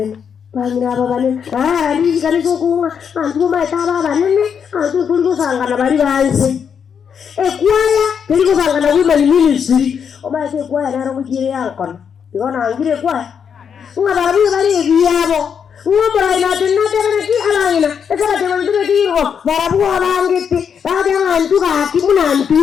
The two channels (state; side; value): quieter; right; 7.2 dB